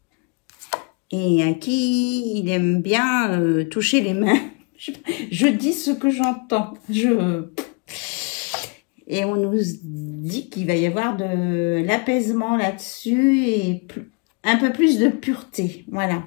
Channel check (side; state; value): right; quieter; 32.3 dB